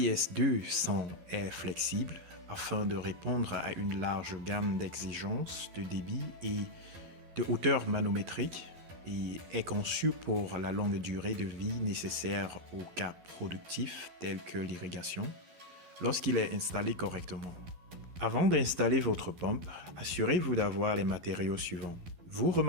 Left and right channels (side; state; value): left; late; 11 ms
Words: est flexible afin de répondre à une large gamme d'exigences de débit et de hauteur manométrique et est conçue pour la longue durée de vie nécessaire aux cas productifs tels que l'irrigation lorsqu'il est installé correctement. Avant d'installer votre pompe, assurez-vous d'avoir les matériaux suivants. Vous